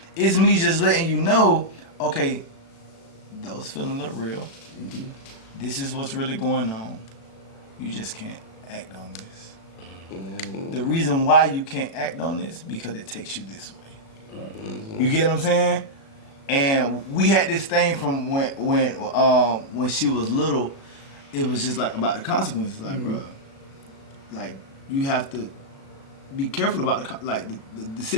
It's me just letting you know, okay, those feelings are real. This is what's really going on. You just can't act on this. The reason why you can't act on this because it takes you this way. You get what I'm saying? And we had this thing from when she was little. It was just like about the consequences, like bro, like you have to be careful about the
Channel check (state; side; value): late; right; 36 ms